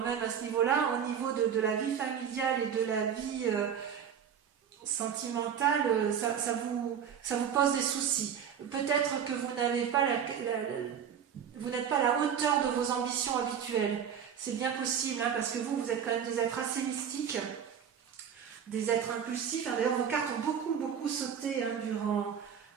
même à ce niveau-là, au niveau de la vie familiale et de la vie sentimentale, ça vous pose des soucis. Peut-être que vous n'êtes pas à la hauteur de vos ambitions habituelles. C'est bien possible, parce que vous êtes quand même des êtres assez mystiques, des êtres impulsifs. D'ailleurs, vos cartes ont beaucoup sauté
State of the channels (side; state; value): left; quieter; 8.1 dB